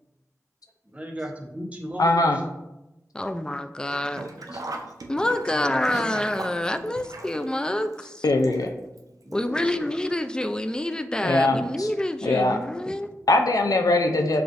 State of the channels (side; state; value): both; normal; correlation 0.81